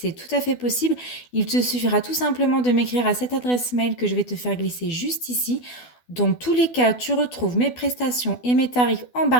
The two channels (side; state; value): right; late; 12 ms